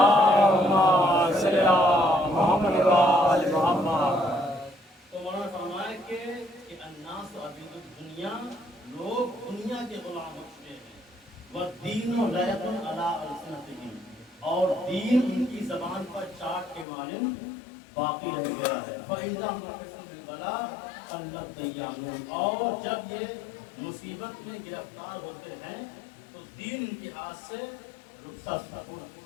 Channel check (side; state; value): right; drops out; at 16.9 s